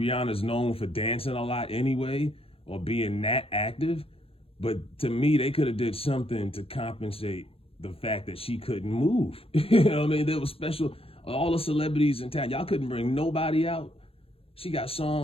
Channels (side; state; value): right; late; 0.27 ms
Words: known for dancing a lot anyway or being that active. But to me, they could have did something to compensate the fact that she couldn't move. You know what I mean? There was special, all the celebrities in town. Y'all couldn't bring nobody out. She got